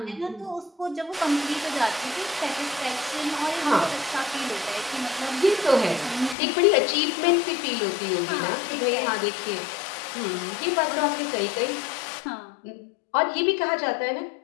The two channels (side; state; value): right; drops out; at 6.4 s